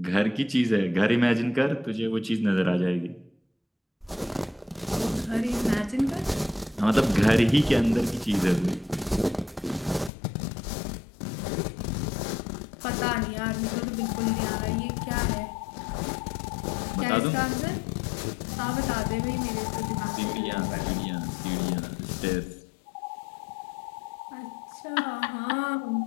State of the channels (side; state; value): right; drops out; at 10.1 s